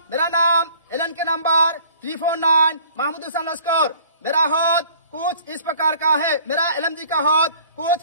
मेरा नाम एलन के नंबर 349 महमूद हुसैन लश्कर। मेरा हौद कुछ इस प्रकार का है। मेरा एलएमजी का हौद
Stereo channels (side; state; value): both; inverted; correlation -0.52